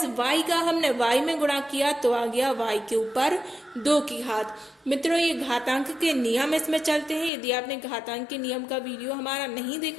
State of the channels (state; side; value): drops out; right; at 7.3 s